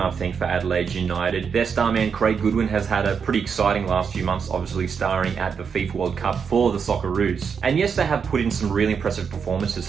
think, for Adelaide United. Their star man, Craig Goodwin, has had a pretty exciting last few months, obviously starring at the FIFA World Cup for the Socceroos. And yes, they have put in some really impressive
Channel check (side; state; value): left; quieter; 6.4 dB